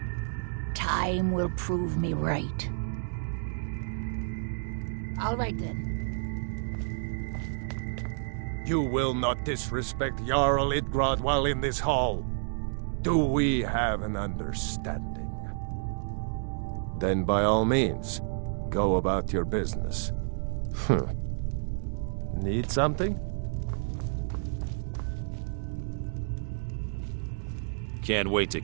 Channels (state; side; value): silent; left; digital silence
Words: Time will prove me right. All right then. You will not disrespect Jarl Idgrod while in this hall. Do we have an understanding? Then by all means, go about your business. Need something? Can't wait to